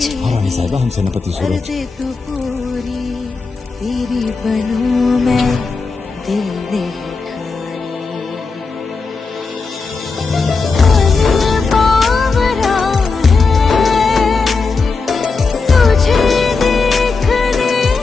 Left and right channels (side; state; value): right; quieter; 4.4 dB